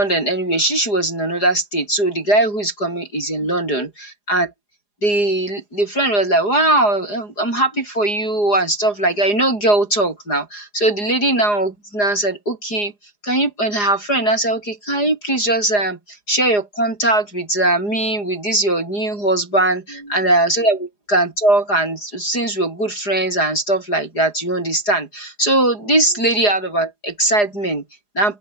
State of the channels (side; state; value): right; late; 4.9 ms